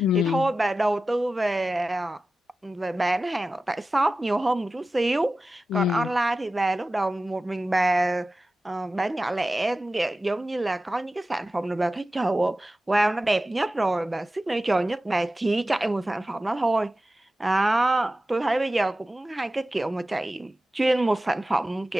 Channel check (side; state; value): both; normal; correlation 0.94